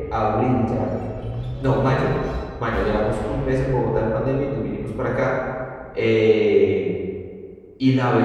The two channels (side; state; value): both; identical; correlation 1.00